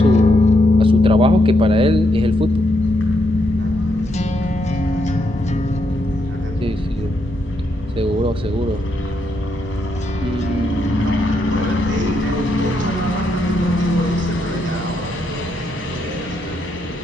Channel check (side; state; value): both; normal; correlation 0.79